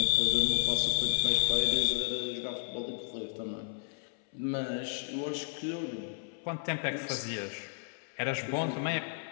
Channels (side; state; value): right; silent; 56 dB below the other